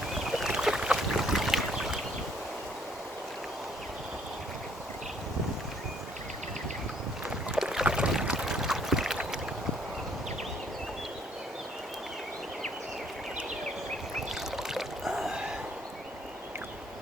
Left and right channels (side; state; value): both; normal; correlation 0.65